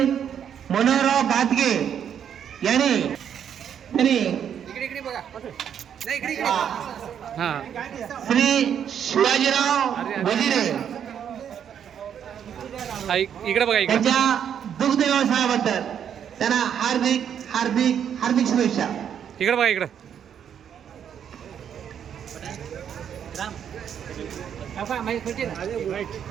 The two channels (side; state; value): left; quieter; 8.7 dB